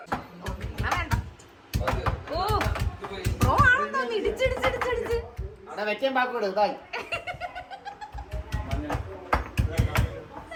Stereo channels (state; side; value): identical; both; correlation 1.00